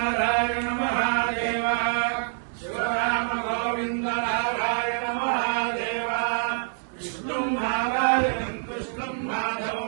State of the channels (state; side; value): silent; left; digital silence